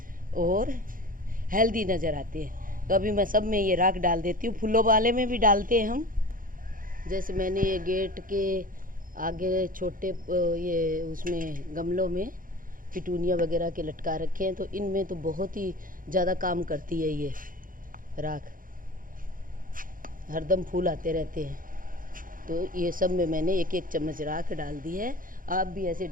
और हेल्दी नज़र आते हैं। तो अभी मैं सब में ये राख डाल देती हूँ। फूलों वाले में भी डालते हैं हम, जैसे मैंने ये गेट के आगे छोटे ये उसमें गमलों में पिटूनिया वगैरह के लटका रखे हैं, तो इनमें तो बहुत ही ज़्यादा काम करती है ये राख, हरदम फूल आते रहते हैं। तो ये सब में मैंने एक एक चम्मच राख डाल दी है। आप भी ऐसे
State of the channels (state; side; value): late; left; 0.40 ms